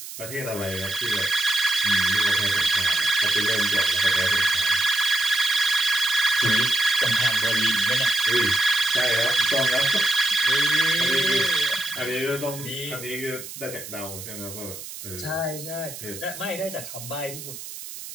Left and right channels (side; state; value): right; noise; hiss, 12 dB below the sound